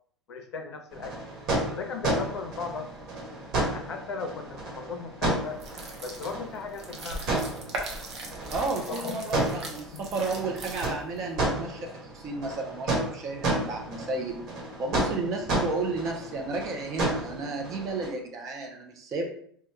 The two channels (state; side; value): normal; both; correlation 0.34